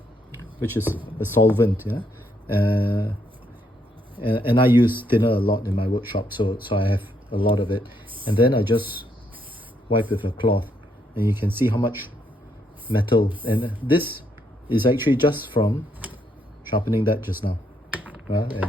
which is a solvent, yeah. And I use thinner a lot in my workshop, so I have a lot of it. And then I just wipe with a cloth, and you can see how much metal. And this is actually just from sharpening that just now.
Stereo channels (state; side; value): normal; both; correlation 0.75